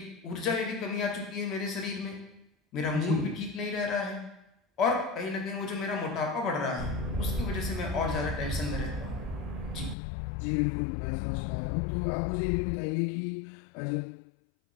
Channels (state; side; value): drops out; right; at 10.0 s